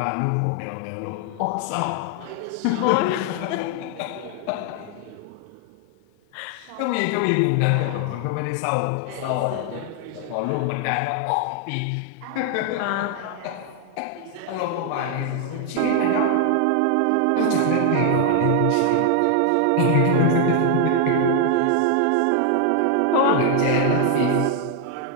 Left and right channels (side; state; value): both; different; correlation 0.00